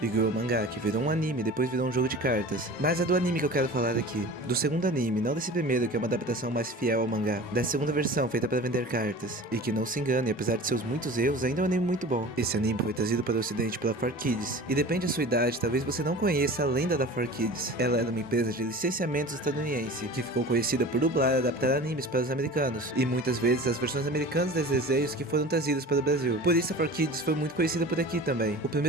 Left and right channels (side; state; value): both; normal; correlation 0.38